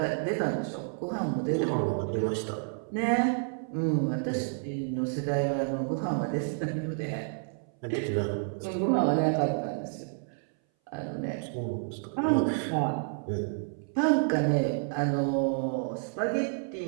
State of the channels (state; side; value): silent; left; 58 dB below the other